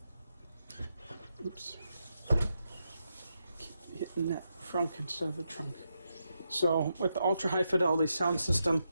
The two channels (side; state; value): both; inverted; correlation -0.84